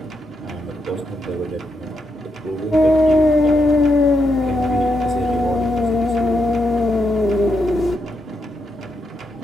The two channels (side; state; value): both; normal; correlation 0.82